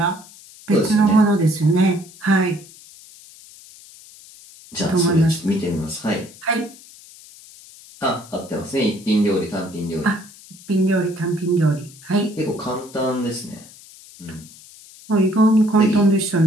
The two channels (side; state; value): left; noise; hiss, 21 dB below the sound